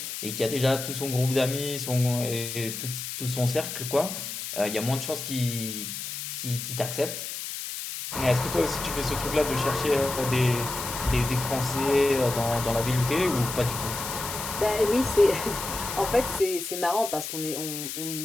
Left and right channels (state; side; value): noise; left; hiss, 6 dB below the sound